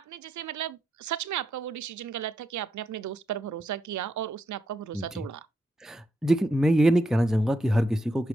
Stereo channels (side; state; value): both; normal; correlation 0.80